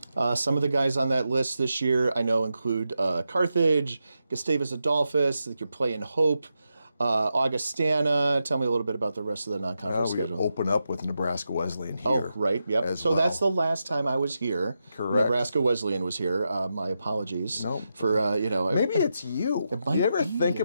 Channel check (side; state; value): both; inverted; correlation -0.87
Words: Some of the guys on that list this year I know include Carthage, Gustavus Adolphus, you're playing Hope. Augustana. Tell me a little bit about the rest of the non-conference We schedule. open up with Nebraska Wesleyan here. Oh, right. Yep. So that's the last time I was here. Correct. Nebraska Wesleyan was here. My apologies. No. For maybe it's you. might You ever be, think it